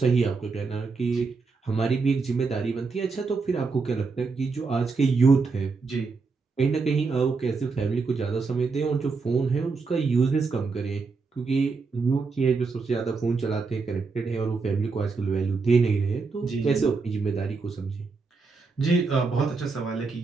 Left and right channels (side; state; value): left; quieter; 4.5 dB